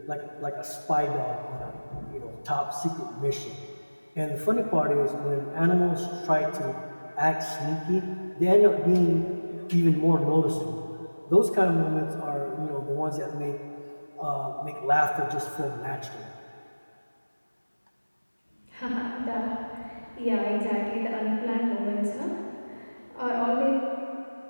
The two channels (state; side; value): inverted; both; correlation -1.00